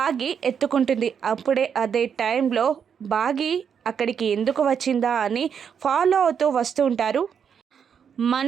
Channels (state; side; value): quieter; left; 7.4 dB